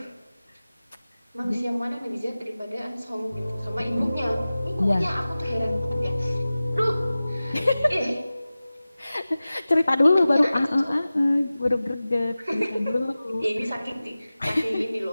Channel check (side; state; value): both; inverted; correlation -0.97